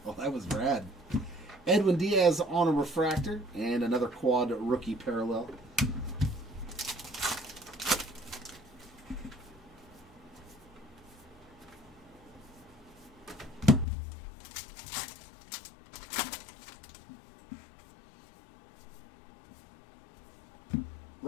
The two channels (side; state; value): right; drops out; at 13.9 s